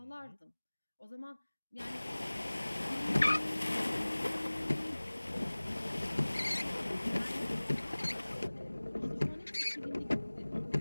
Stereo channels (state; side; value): inverted; both; correlation -1.00